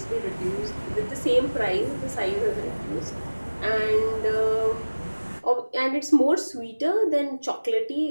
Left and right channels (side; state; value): both; inverted; correlation -1.00